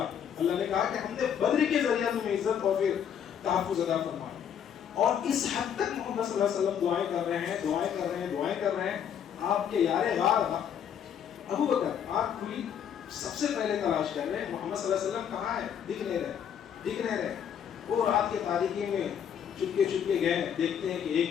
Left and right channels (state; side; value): quieter; right; 8.5 dB